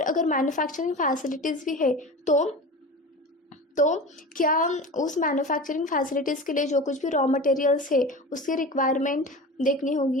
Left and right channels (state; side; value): normal; both; correlation 0.32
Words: अगर मैन्युफैक्चरिंग फैसिलिटीज़ भी है तो क्या उस मैन्युफैक्चरिंग फैसिलिटीज़ के लिए जो कुछ भी रॉ मटेरियल्स है उसकी रिक्वायरमेंट देखनी